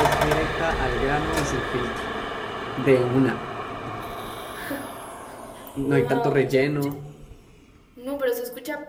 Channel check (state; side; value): identical; both; correlation 1.00